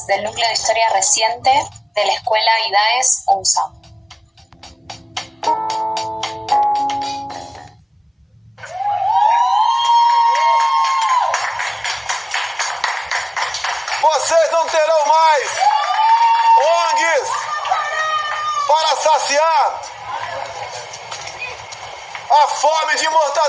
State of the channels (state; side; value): identical; both; correlation 1.00